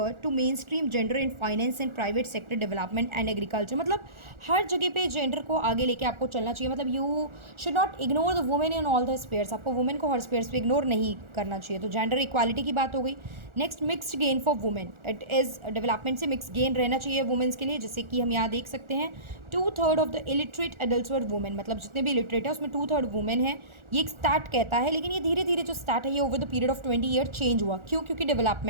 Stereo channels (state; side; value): late; left; 1.4 ms